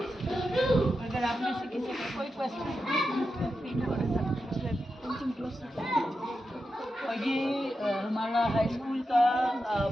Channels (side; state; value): both; normal; correlation 0.89